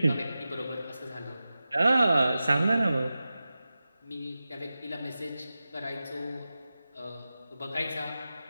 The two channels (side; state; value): both; inverted; correlation -0.94